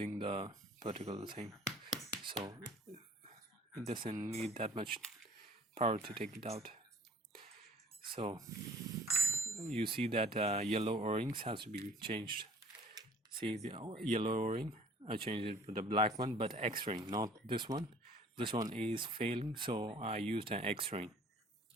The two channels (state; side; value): normal; both; correlation 0.52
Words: the particular thing, so it doesn't need that much power to take it out. So you see that yellow O-rings has to be changed. See the yellow O-ring, I changed it with the black one, but X-ring, not this one. This one is failing, so I used an X-ring.